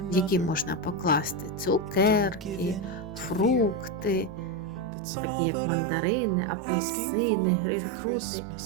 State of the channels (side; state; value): left; drops out; at 4.9 s